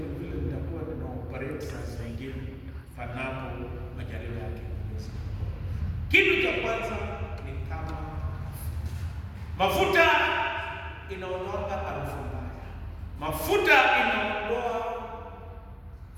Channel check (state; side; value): identical; both; correlation 1.00